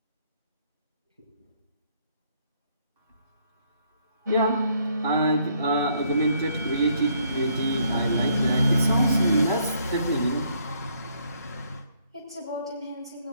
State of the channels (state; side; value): inverted; both; correlation -0.68